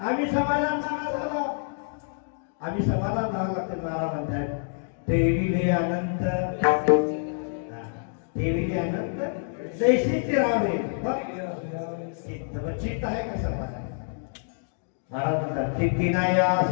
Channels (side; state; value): right; silent; digital silence